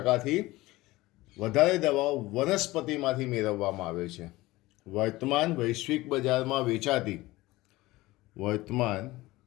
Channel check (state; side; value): quieter; right; 19.1 dB